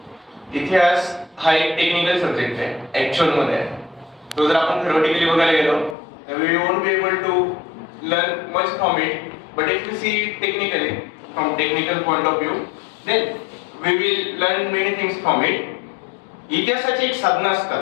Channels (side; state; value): right; drops out; at 6.0 s